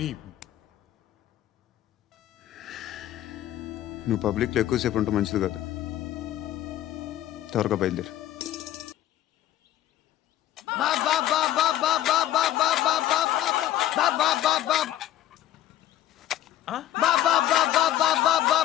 నువ్వు పబ్లిక్లో ఎక్కువసేపు ఉంటే మంచిది కాదు. త్వరగా బయలుదేరు.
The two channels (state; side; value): quieter; right; 12.7 dB